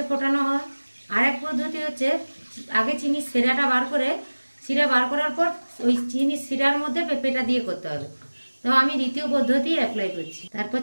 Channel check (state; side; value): inverted; both; correlation -1.00